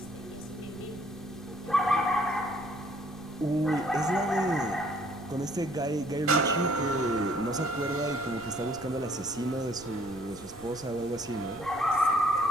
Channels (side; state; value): right; noise; rumble, 20 dB below the sound